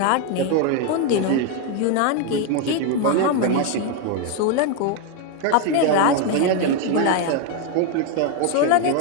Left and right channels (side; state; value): both; different; correlation 0.01